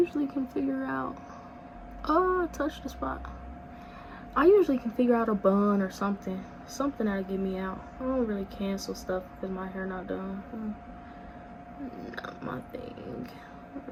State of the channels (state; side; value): identical; both; correlation 1.00